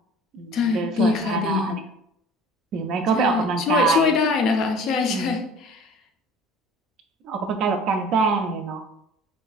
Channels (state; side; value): normal; both; correlation 0.45